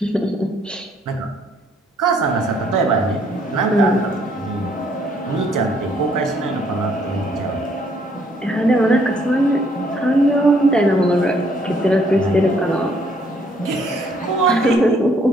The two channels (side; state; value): both; normal; correlation 0.66